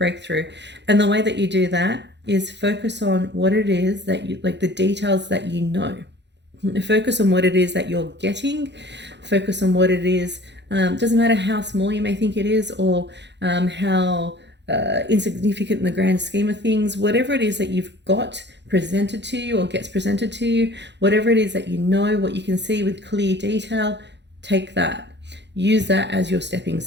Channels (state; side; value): late; left; 0.51 ms